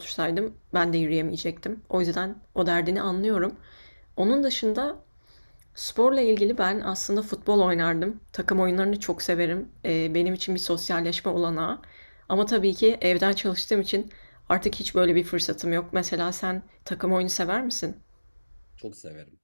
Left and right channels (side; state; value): both; inverted; correlation -1.00